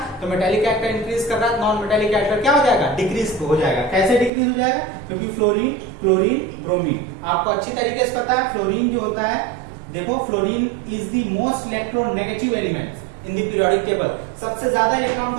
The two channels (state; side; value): drops out; left; at 4.3 s